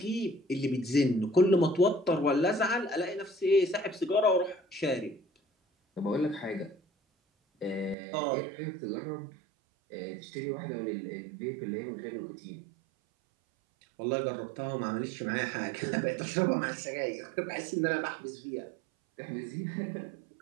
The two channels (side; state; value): left; drops out; at 8.0 s